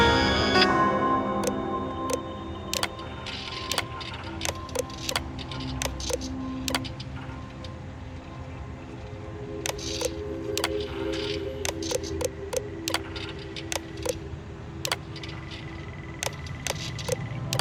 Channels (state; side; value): identical; both; correlation 1.00